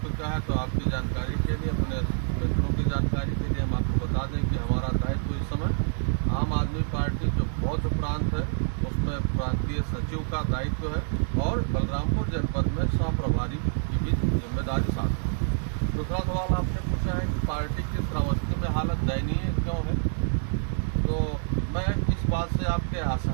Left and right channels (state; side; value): silent; left; digital silence